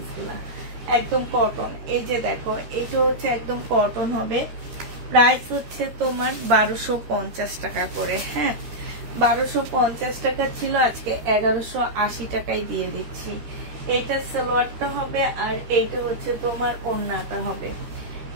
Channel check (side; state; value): left; late; 13 ms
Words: একদম কটন। এই যে দেখো, এটা হচ্ছে একদম কটন হবে। প্রাইস হচ্ছে তোমার 1250 টাকা করে, হ্যাঁ। 1250 টাকা ছিল, আজকে 1180 টাকায় দিয়ে দিচ্ছি। এটা সালোয়ারটা হবে আর এইটা হচ্ছে তোমার ওড়নাটা হবে।